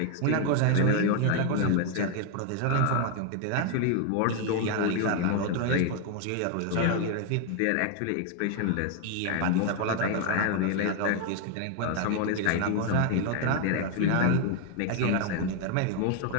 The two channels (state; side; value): different; both; correlation 0.00